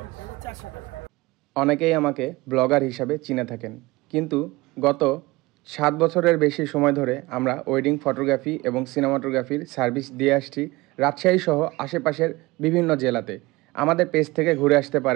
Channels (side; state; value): left; quieter; 21.5 dB